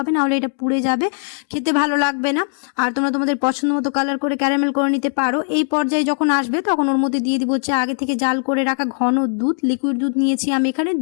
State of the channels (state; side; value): silent; right; digital silence